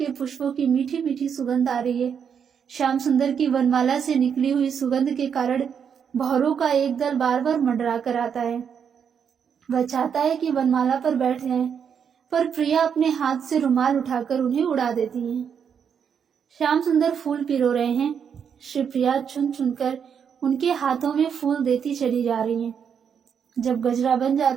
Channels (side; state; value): left; quieter; 7.4 dB